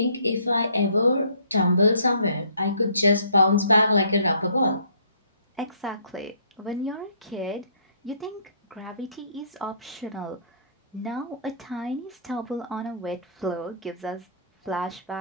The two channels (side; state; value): both; inverted; correlation -0.60